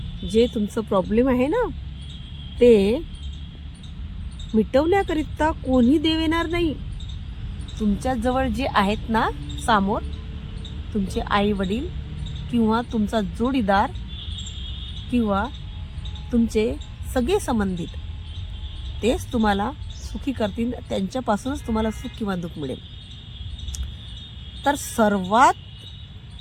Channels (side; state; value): both; identical; correlation 1.00